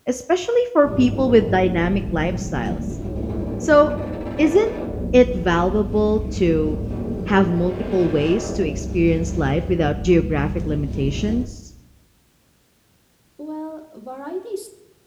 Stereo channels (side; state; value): both; identical; correlation 1.00